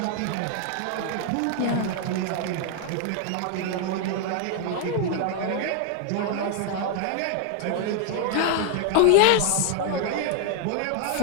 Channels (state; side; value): different; both; correlation 0.00